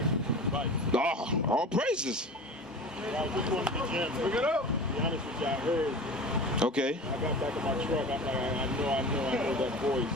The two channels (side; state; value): both; normal; correlation 0.35